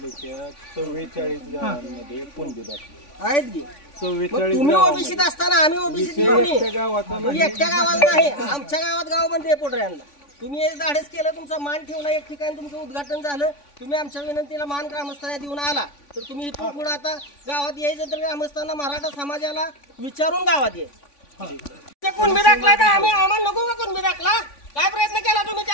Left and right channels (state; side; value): late; right; 3.5 ms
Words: 44 गावांमध्ये कोणते दाखले आहेत की 44 तुम्ही ओबीसीत असताना आम्ही ओबीसी एकट्या गावात नाही, आमच्या गावात गावामध्ये पोटऱ्यांना तुम्ही धाडस केलं, तुमचा मान ठेवला एक ठिकाणी, तुमचं उद्घाटन झालं, तुम्ही आमच्या विनंतीला मान ग्रामस्थांना देऊन आला, तर तुम्ही इथून पुढे आता गावात यायचं तर ग्रामस्थांना मराठा समाजाला विचारून गावात यायचं. कुणबी दाखलाय तर आम्ही आम्हाला नको का कुणबी दाखला? काय प्रयत्न केला तुम्ही